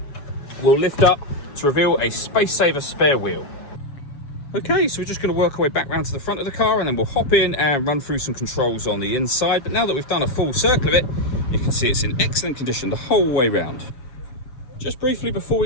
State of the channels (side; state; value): right; late; 7.2 ms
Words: will lift up to reveal a space saver spare wheel. Okay, so we're just going to work our way back round to the front of the car, and then we'll hop in and run through some controls on the inside. But now that we've done a full circle of it, you can see it's in excellent condition the whole way round. Just briefly before